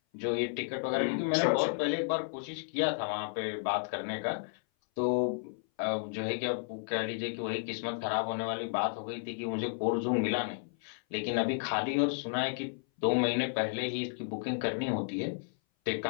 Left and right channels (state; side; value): silent; right; 56 dB below the other